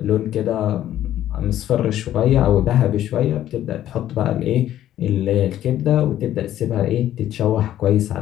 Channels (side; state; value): right; quieter; 12.2 dB